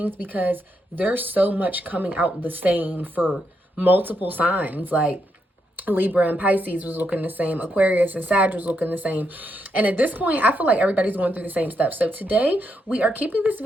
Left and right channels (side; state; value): both; normal; correlation 0.80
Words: because there's so much coming out the same for multiple signs. Like Libra and Pisces was looking the same. Aquarius and Sag was looking the same. And at this point, I feel like everybody's going through the same stuff. So today, we are keeping this